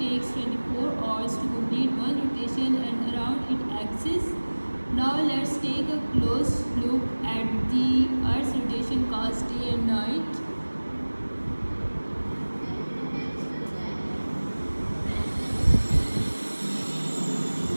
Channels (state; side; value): inverted; both; correlation -1.00